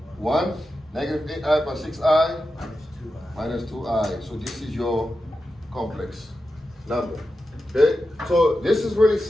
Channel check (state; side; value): normal; both; correlation 0.90